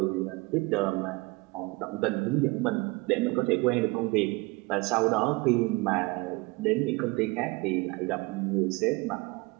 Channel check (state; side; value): quieter; left; 25.0 dB